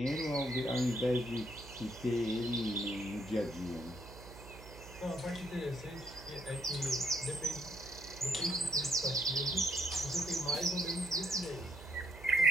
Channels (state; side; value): noise; right; hum, 16 dB below the sound